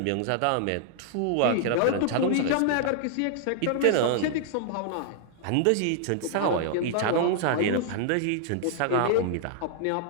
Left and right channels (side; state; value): both; different; correlation -0.01